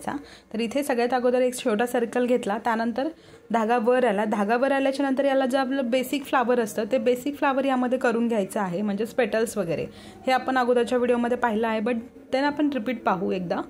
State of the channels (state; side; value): identical; both; correlation 1.00